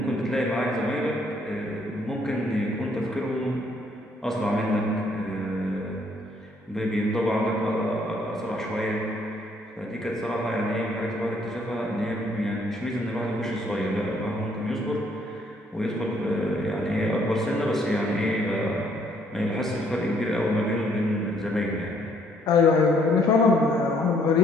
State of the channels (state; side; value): normal; both; correlation 0.67